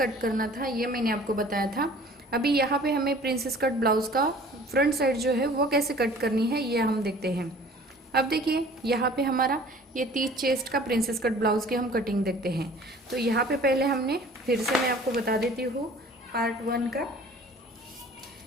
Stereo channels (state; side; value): normal; both; correlation 0.48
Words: करना था ये मैंने आपको बताया था। अभी यहाँ पे हमें प्रिंसेस कट ब्लाउज़ का फ्रंट साइड जो है वो कैसे कट करनी है ये हम देखते हैं। अब देखिए यहाँ पे हमारा ये 30 चेस्ट का प्रिंसेस कट ब्लाउज़ की हम कटिंग देखते हैं। तो यहाँ पे पहले हमने फिर से मैं आपको बता देती हूँ पार्ट 1 का।